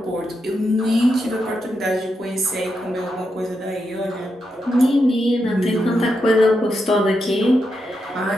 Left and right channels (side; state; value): both; normal; correlation 0.85